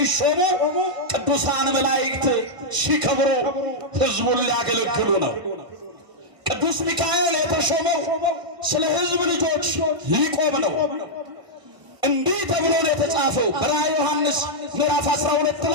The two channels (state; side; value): late; left; 1.5 ms